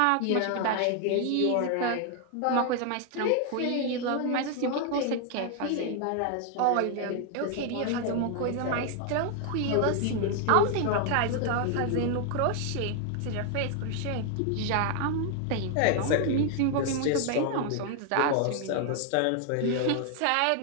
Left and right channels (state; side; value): different; both; correlation 0.00